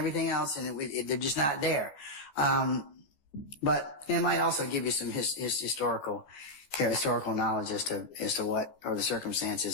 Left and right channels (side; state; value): right; late; 14 ms